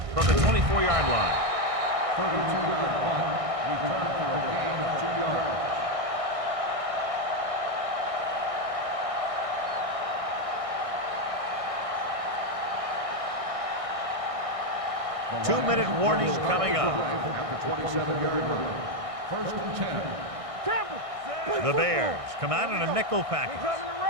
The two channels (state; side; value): late; left; 1.6 ms